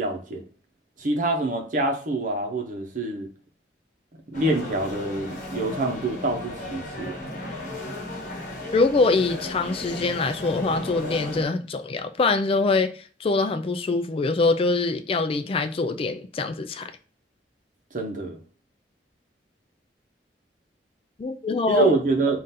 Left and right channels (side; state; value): both; normal; correlation 0.36